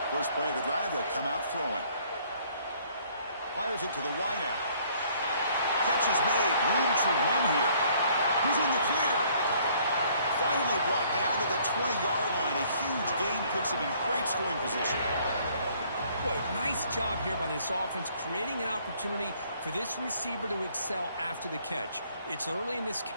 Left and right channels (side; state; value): both; inverted; correlation -0.61